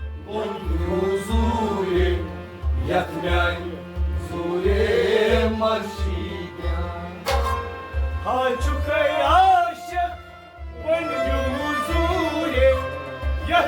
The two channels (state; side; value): identical; both; correlation 1.00